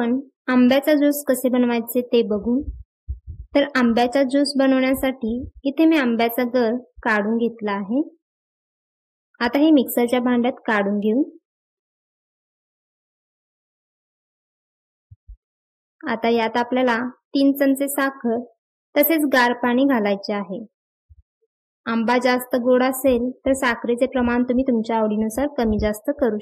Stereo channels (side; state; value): both; identical; correlation 1.00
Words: आंब्याचा ज्यूस कसे बनवायचे ते बघू। तर आंब्याचा ज्यूस बनवण्यासाठी इथे मी आंब्याचा गर काढून घेतला आहे। आता हे मिक्सरच्या भांड्यात काढून घेऊ। आता यात आपल्याला 3 चमचे साखर तसेच गार पाणी घालायचे आहे। आंबा जास्त गोड असेल तर साखरेचे प्रमाण तुम्ही तुमच्या आवडीनुसार कमी जास्त करू